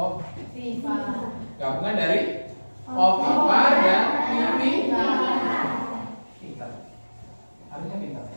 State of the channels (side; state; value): both; inverted; correlation -1.00